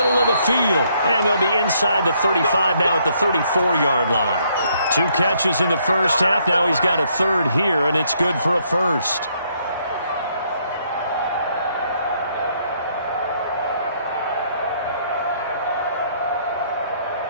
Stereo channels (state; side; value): inverted; both; correlation -0.70